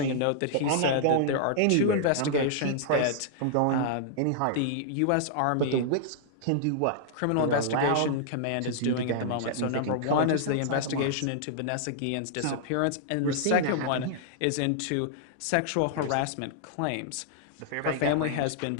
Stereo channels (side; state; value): both; different; correlation -0.01